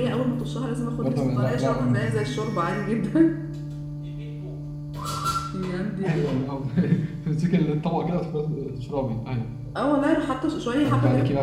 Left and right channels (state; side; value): identical; both; correlation 1.00